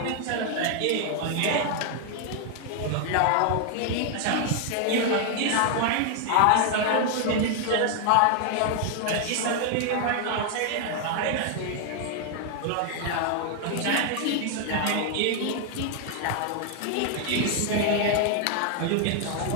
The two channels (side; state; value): both; different; correlation 0.00